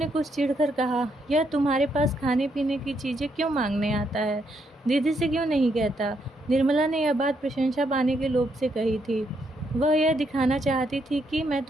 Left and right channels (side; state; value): both; normal; correlation 0.76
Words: कुछ चिढ़कर कहा, यह तुम्हारे पास खाने पीने की चीज़ें क्यों मांगने आता है? दीदी से क्यों नहीं कहता? निर्मला ने यह बात प्रशंसा पाने के लोभ से कही थी। वह यह दिखाना चाहती थी कि मैं